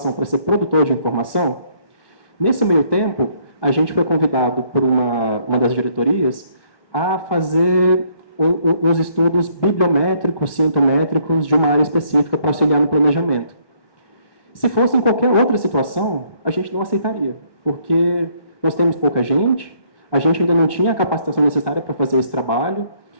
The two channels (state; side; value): late; right; 1.1 ms